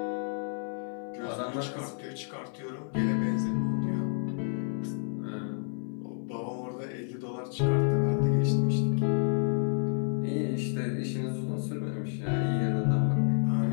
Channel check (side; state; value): right; silent; 55 dB below the other